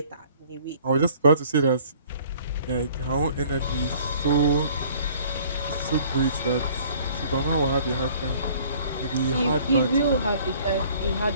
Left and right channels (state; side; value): inverted; both; correlation -0.54